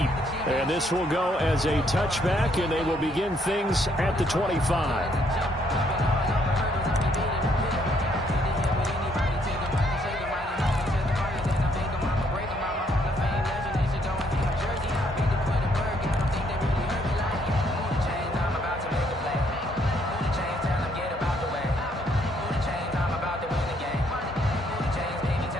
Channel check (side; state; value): both; normal; correlation 0.70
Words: and this will go as a touchback, and they will begin things at the 25.